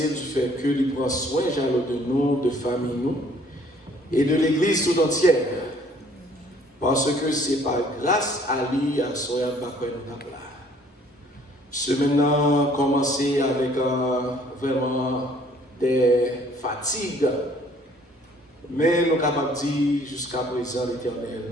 du fait que nous prend soin de nous, de famille nous et de l'église tout entière. Parce que c'est par grâce à lui, à soya, nous là. Ce maintenant commencer avec vraiment des fatigues. Mais nous sommes capables de dire jusqu'à présent,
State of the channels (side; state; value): both; normal; correlation 0.58